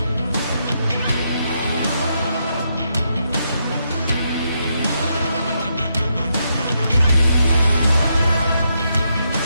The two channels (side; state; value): both; inverted; correlation -0.80